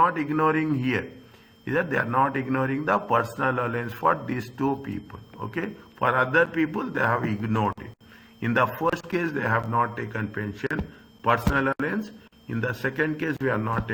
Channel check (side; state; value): both; identical; correlation 1.00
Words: ignoring here. Is that they are not ignoring the personal allowance for these two people. Okay, for other people they have ignored it. In the first case they have not taken pension, personal allowance. In the second case we are not